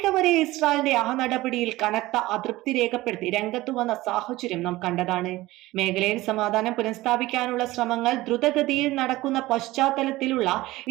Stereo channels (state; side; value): quieter; left; 18.2 dB